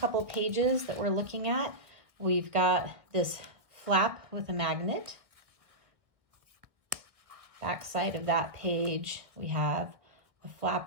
pages that we're looking at, we've got this flap with a magnet. Back side of that page, we have a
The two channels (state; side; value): late; left; 1.6 ms